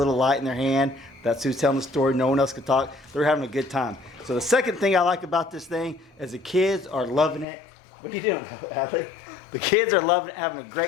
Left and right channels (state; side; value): drops out; right; at 7.5 s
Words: light in their hand, that's who's telling the story. No one else can talk. They're having a good time. So the second thing I like about this thing is the kids are loving it. What are you doing, Adley? The kids are loving it, having a